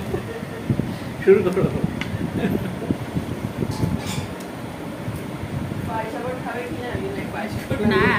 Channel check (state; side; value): identical; both; correlation 1.00